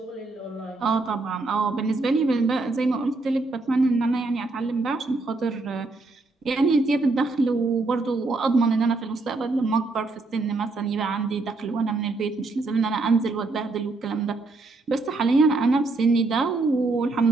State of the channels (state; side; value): quieter; left; 3.4 dB